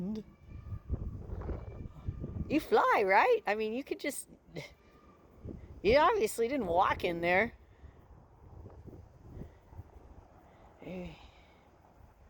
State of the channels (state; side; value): identical; both; correlation 1.00